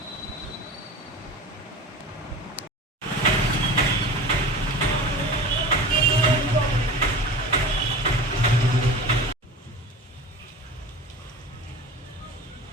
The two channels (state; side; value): normal; both; correlation 0.35